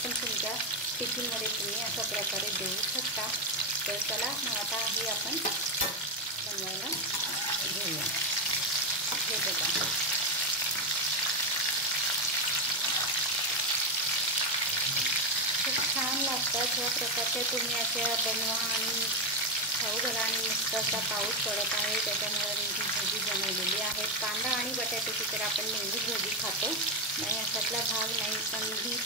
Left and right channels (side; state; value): both; normal; correlation 0.07